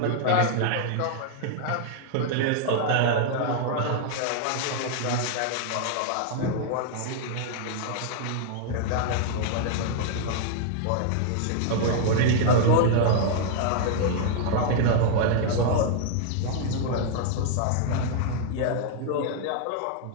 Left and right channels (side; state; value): both; different; correlation 0.00